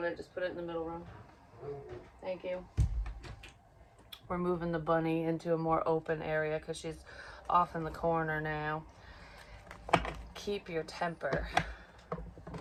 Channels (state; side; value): identical; both; correlation 1.00